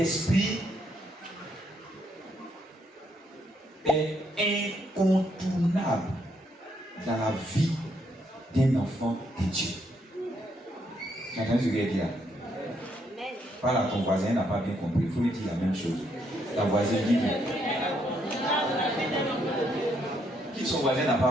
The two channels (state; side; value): normal; both; correlation 0.74